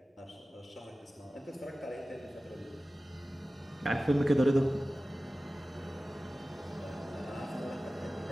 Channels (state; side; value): normal; both; correlation 0.96